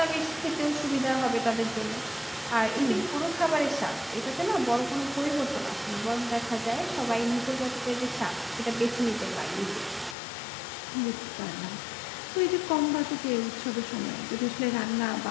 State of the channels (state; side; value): drops out; right; at 10.2 s